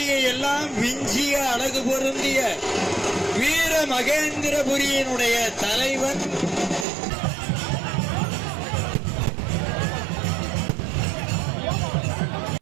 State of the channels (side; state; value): left; drops out; at 6.9 s